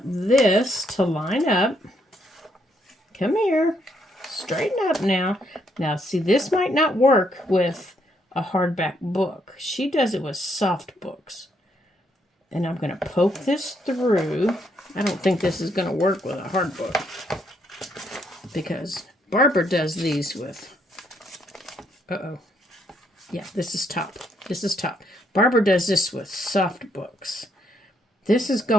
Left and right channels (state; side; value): normal; both; correlation 0.73